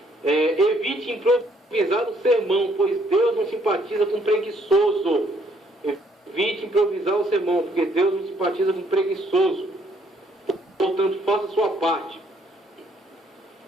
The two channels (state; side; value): normal; both; correlation 0.67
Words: Evite improvisar o sermão, pois Deus não simpatiza com preguiçoso. Evite improvisar o sermão, porque Deus não simpatiza com preguiçoso. Portanto, faça a sua parte.